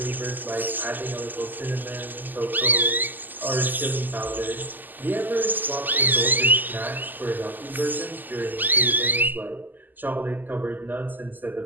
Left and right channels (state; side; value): late; left; 0.087 ms